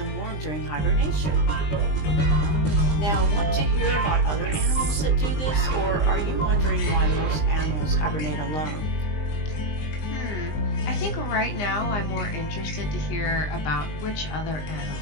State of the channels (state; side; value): late; right; 20 ms